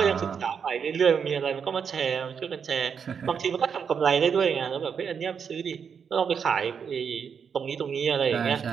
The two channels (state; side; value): quieter; left; 6.8 dB